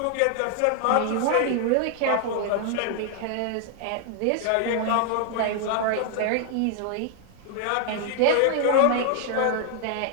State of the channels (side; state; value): both; different; correlation 0.00